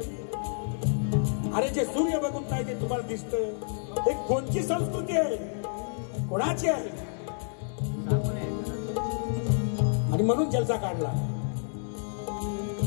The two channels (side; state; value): right; silent; digital silence